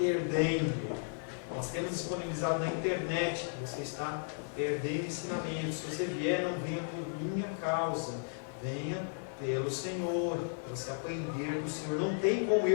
Nós temos disponibilizado na internet, você está perdendo ensinamentos. Se você vier, não venha por minha causa, venha pelo Senhor, para você aprender do Senhor. Não tem como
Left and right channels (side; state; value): right; silent; 55 dB below the other